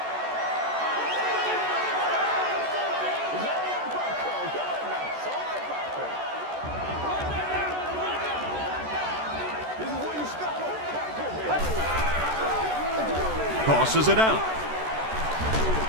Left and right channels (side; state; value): left; late; 14 ms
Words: Tosses it out.